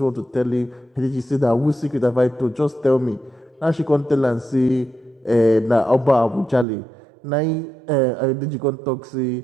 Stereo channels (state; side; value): drops out; left; at 6.7 s